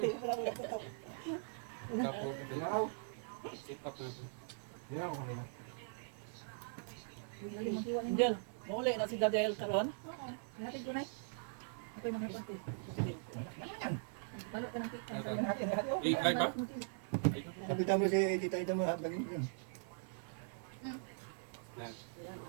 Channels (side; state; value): left; silent; 51 dB below the other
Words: Kapo. Sit up natin. Hindi ako kanina. Diyan, mauli na si Daniel karon. Natin ko na. Ako'y mga pati. Balot ka ng cake. Live ba? Kapita mo si Tita Ida mo habagin ko.